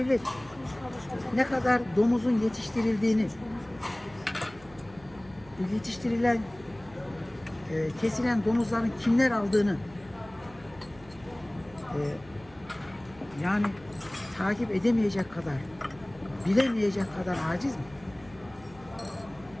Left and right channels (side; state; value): right; noise; hum, 23 dB below the sound